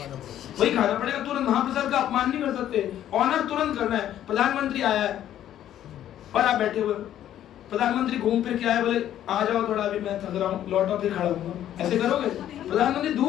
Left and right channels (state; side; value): quieter; right; 11.5 dB